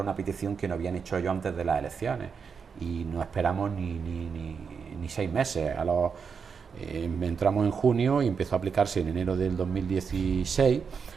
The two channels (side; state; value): left; quieter; 6.0 dB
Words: una petición que no habían hecho ellos antes de las elecciones, y no esperamos ni 6 meses. Entramos en junio y empezó a aplicarse en enero del 2016,